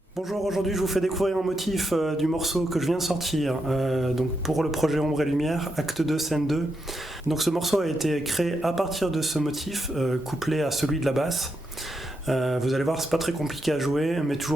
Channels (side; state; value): both; normal; correlation 0.83